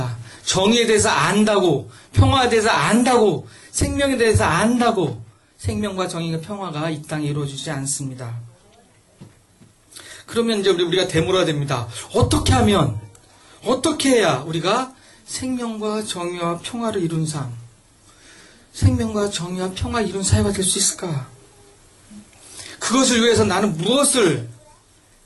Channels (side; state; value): both; identical; correlation 1.00